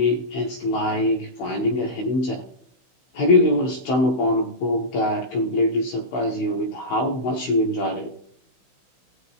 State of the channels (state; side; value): late; right; 16 ms